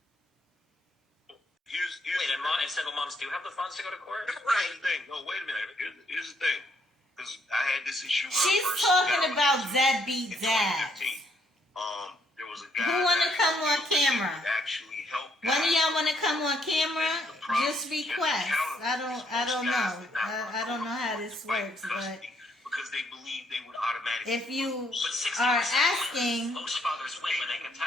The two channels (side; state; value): both; normal; correlation 0.71